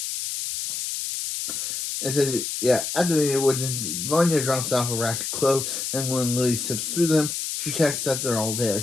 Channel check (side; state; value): left; noise; hiss, 4 dB below the sound